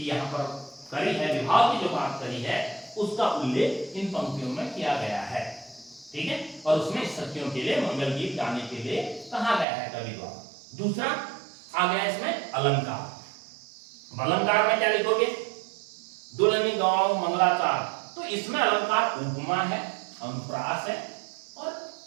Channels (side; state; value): left; drops out; at 9.7 s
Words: यहाँ पर करी है, विवाह की जो बात करी है, उसका उल्लेख इन पंक्तियों में किया गया है, ठीक है। और उसमें सखियों के लिए मंगल गीत गाने के लिए कहा गया है कवि द्वारा। दूसरा आ गया इसमें अलंकार। अलंकार में क्या लिखोगे? दुल्हनी गाँव मंगलाचार। तो इसमें अलंकार उपमा है, अनुप्रास है और